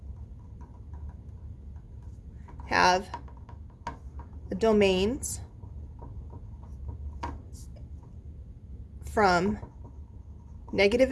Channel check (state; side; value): identical; both; correlation 1.00